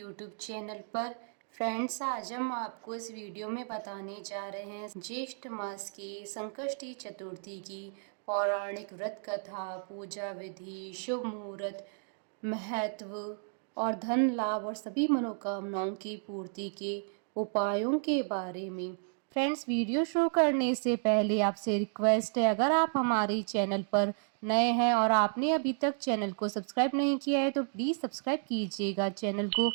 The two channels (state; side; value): silent; left; digital silence